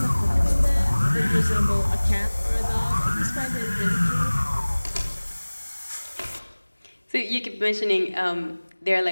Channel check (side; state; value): both; inverted; correlation -1.00